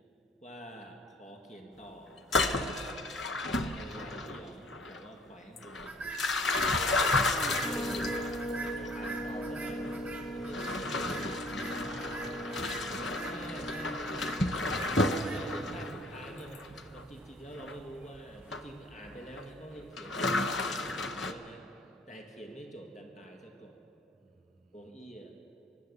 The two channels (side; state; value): both; normal; correlation 0.55